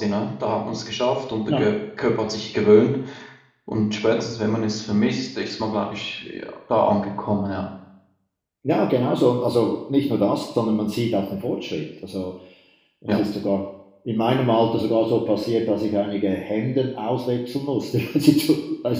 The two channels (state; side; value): identical; both; correlation 1.00